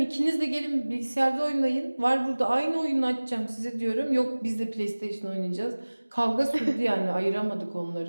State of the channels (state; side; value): inverted; both; correlation -1.00